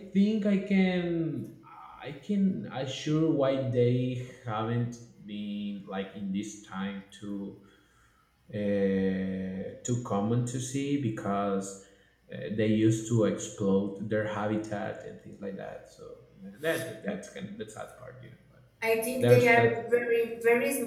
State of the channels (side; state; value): both; identical; correlation 1.00